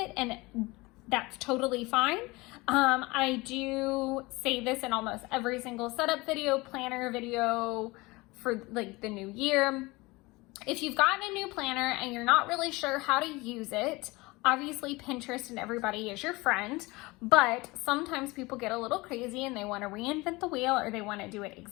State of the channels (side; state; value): right; quieter; 22.9 dB